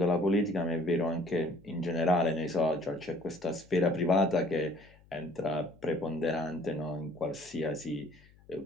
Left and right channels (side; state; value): left; noise; hum, 27 dB below the sound